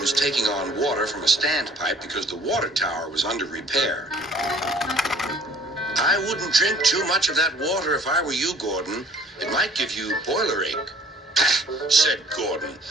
taking on water from a standpipe because the water tower was under repair. "I wouldn't drink too much of that water if I were you, Gordon. It might give you boiler ache." "Pah," said Gordon.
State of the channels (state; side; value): normal; both; correlation 0.55